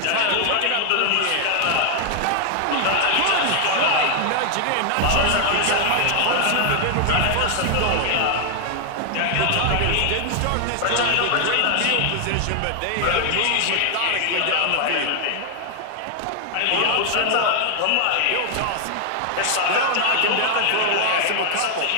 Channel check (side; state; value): both; different; correlation 0.00